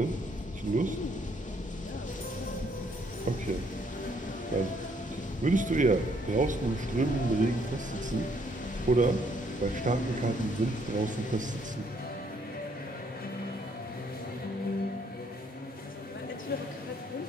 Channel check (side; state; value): both; normal; correlation 0.68